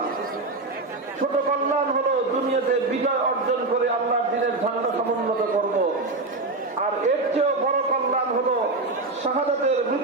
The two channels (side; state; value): left; quieter; 3.3 dB